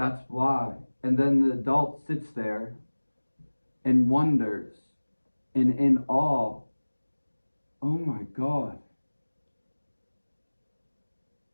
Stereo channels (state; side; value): inverted; both; correlation -1.00